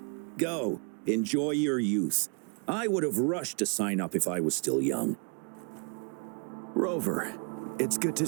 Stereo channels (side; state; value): left; quieter; 38.5 dB